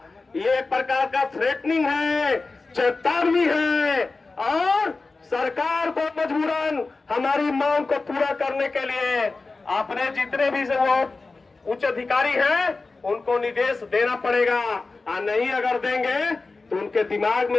ये एक प्रकार का थ्रेटनिंग है, चेतावनी है, और सरकार को मजबूरन हमारी मांग को पूरा करने के लिए अपने जितने भी उच्च अधिकारी हैं उनको निर्देश देना पड़ेगा। और नहीं अगर देंगे तो उनके दिमाग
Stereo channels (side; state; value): right; quieter; 3.7 dB